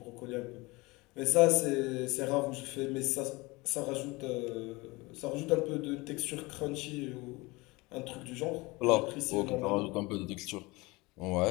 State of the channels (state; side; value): quieter; right; 23.5 dB